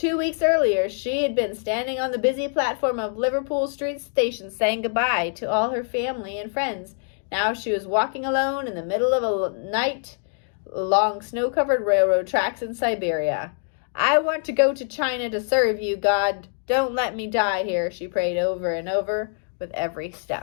weeks earlier, she had been standing on the busy platform of Liverpool Street Station saying goodbye to all her family and friends. Now she was walking alone in the middle of a night along snow-covered railroad tracks in Siberia. "I want to go to China to serve you, God. Don't let me die here," she prayed over and over with every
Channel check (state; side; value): silent; right; 62 dB below the other